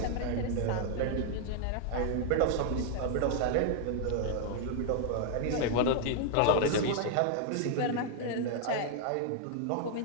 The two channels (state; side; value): different; both; correlation 0.00